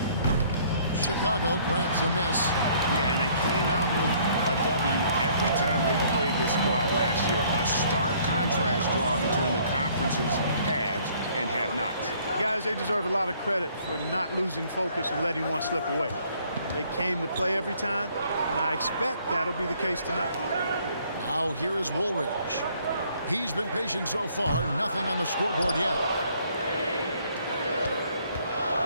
Chicago grabs a miss. Yeah, and they came out with a W every time they played this squad last year. A stark contrast drawn between the conference's haves and have-nots. Guys, they deserve a lot of credit for not losing focus and letting one slip away. They came to play every time, and I expect that'll be the case tonight. Now here is Woolridge. He's been patient so far. Nothing on the scoreboard yet.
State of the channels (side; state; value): both; inverted; correlation -0.61